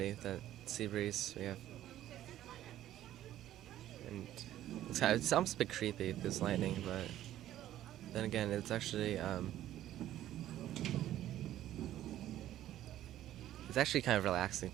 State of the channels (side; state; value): left; quieter; 12.9 dB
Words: with the sea breeze we have. And it's almost a bit creepy, this lightning, but then again, it's actually kind of relaxing,